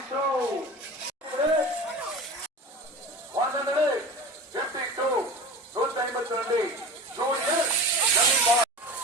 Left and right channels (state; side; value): normal; both; correlation 0.34